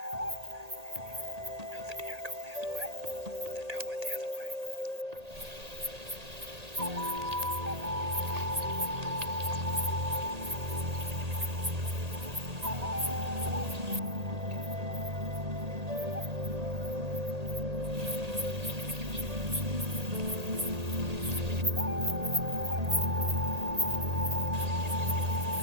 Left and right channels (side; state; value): left; late; 1.8 ms